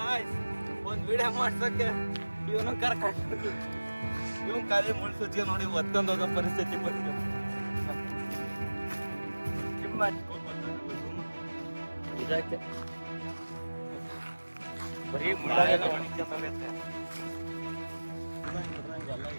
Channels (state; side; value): inverted; both; correlation -1.00